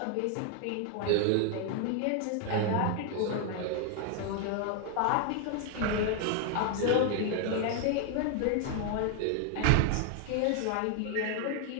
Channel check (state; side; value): different; both; correlation 0.01